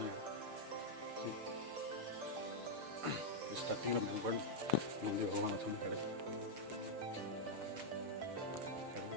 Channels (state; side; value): late; left; 6.6 ms